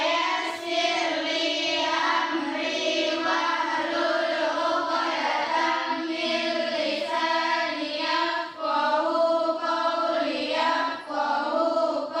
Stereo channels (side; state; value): both; identical; correlation 1.00